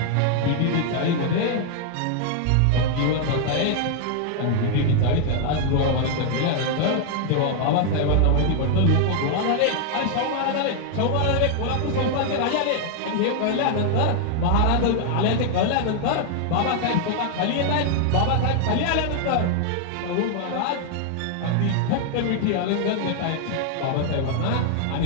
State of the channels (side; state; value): both; different; correlation 0.00